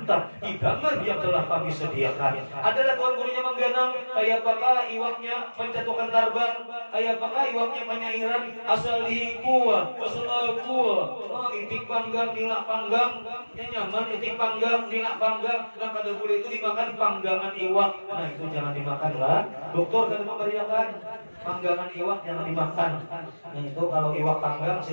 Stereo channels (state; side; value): inverted; both; correlation -1.00